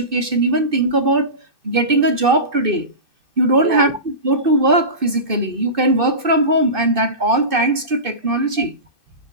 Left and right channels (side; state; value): left; late; 2.6 ms